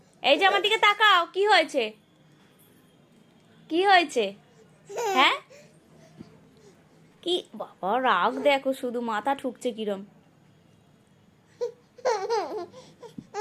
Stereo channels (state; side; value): identical; both; correlation 1.00